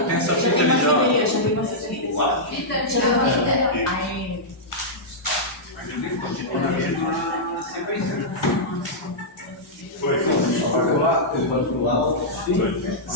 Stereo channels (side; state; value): both; normal; correlation -0.10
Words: Tem essa fita ali já. Foi.